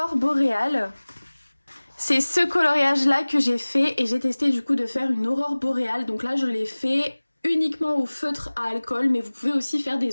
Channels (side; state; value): both; inverted; correlation -1.00